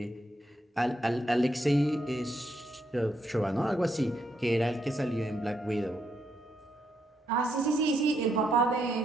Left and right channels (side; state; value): both; normal; correlation 0.78